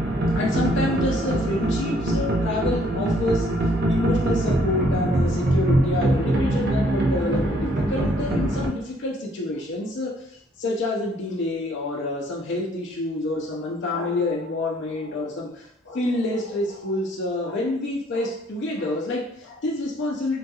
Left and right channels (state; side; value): normal; both; correlation 0.64